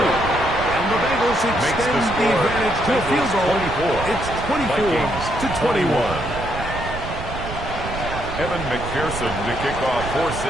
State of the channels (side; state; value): right; noise; rumble, 8 dB below the sound